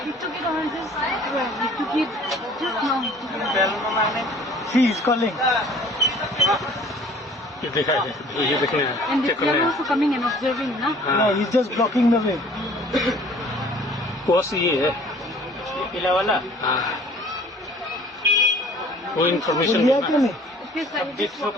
he took it on just he took it just now. She is calling. ये देखा है, ये देखने हैं, And चेक they करने are हैं। also coming and observing, na? No, he's just blocking the way. Course ये है। पीला वाला हाँ। वो इन्फॉर्मेशन लिया क्यों नहीं?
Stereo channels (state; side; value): normal; both; correlation 0.52